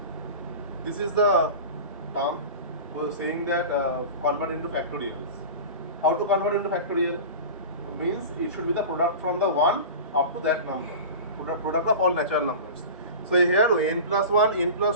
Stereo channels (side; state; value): both; inverted; correlation -0.32